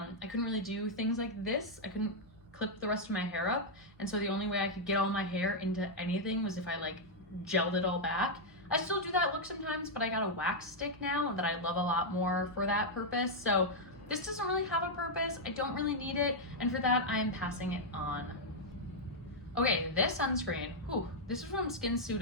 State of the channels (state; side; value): normal; both; correlation -0.03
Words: couldn't really do things like this. I couldn't clip the rest of my hair up, and so the only way I could get all my hair into anything was if I like gelled it all back. I still do that look sometimes, but I got a wax stick now that I love a lot more for that purpose, so this doesn't really have a purpose. I don't really need it, and for that I am passing it on. Okay, this sunscreen, this is from